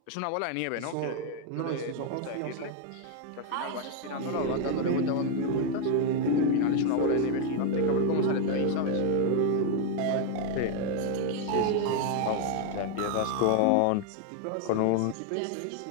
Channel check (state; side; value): different; both; correlation 0.00